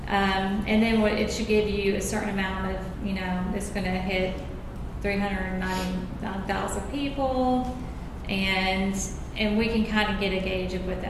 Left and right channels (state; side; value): identical; both; correlation 1.00